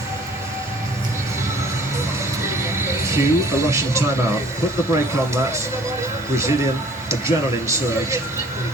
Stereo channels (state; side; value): normal; both; correlation 0.53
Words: Cue a Russian timeout. Put the brake on that Brazilian adrenaline surge.